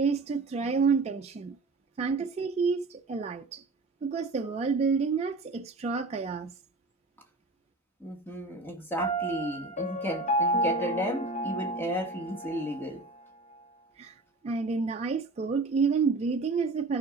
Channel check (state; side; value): quieter; left; 3.3 dB